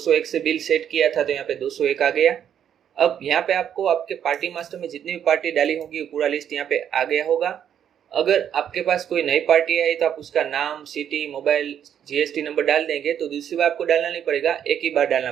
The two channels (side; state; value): left; quieter; 9.2 dB